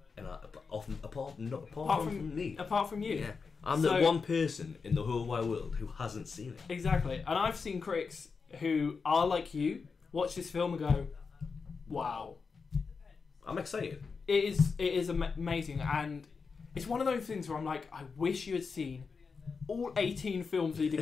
And apart from me. Apart from you. Yeah. I'm the one person in the whole wide world who hasn't seen it. Exactly. And I've seen critics who are like you, watch this film and go, wow. I'm excited. It is amazing, and it's one of those things where I'm like, I wish you had seen all 18 films leading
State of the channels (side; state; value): right; quieter; 5.1 dB